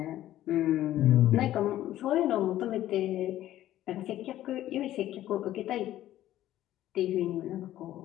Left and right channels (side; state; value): right; quieter; 13.5 dB